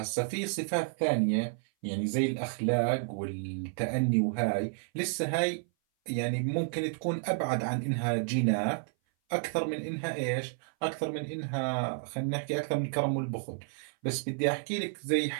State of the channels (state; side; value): silent; left; 56 dB below the other